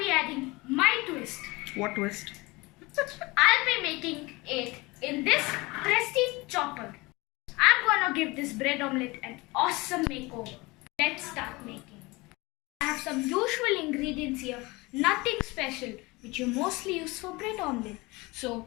adding my twist. What twist? I'll be making it in this prestige chopper. I'm gonna give this bread omelette an awesome makeover. Let's start making. I have some usual ingredients here, nothing special, which you mostly use for bread omelette. So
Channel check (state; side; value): quieter; right; 23.5 dB